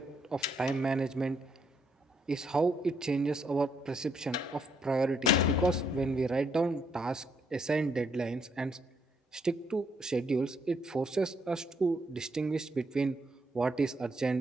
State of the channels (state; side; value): normal; both; correlation 0.73